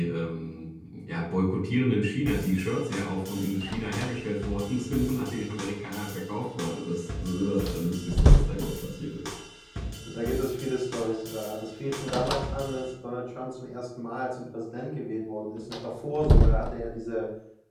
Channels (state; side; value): identical; both; correlation 1.00